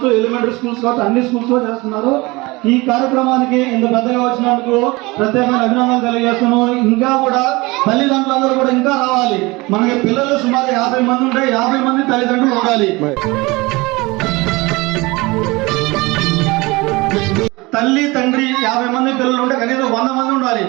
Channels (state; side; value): quieter; left; 23.3 dB